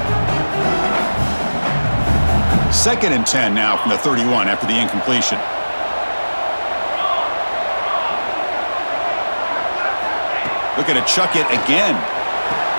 Second and 10 now from the 31 after the incompletion. Looking to chuck it again.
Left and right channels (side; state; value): both; inverted; correlation -1.00